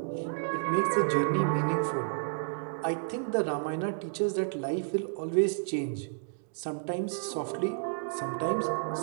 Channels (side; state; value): left; silent; digital silence